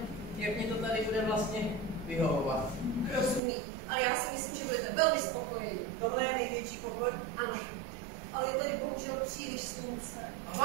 jak mě to tady bude vlastně vyhovovat. Rozumím, ale já si myslím, že budete velmi spokojení. Tohle je největší pokoj. Ano, ale je tady bohužel příliš slunce. A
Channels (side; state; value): left; drops out; at 3.4 s